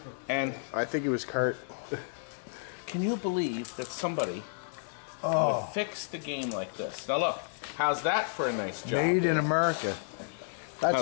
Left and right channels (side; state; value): right; silent; 57 dB below the other